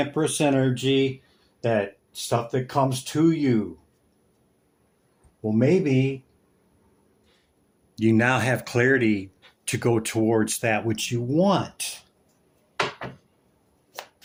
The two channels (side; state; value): both; identical; correlation 1.00